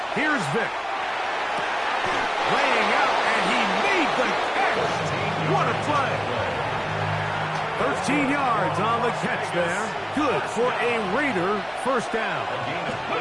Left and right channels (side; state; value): both; identical; correlation 1.00